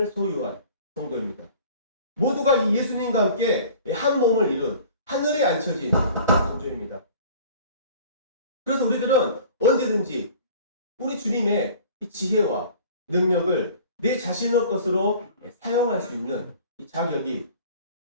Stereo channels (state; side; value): inverted; both; correlation -0.46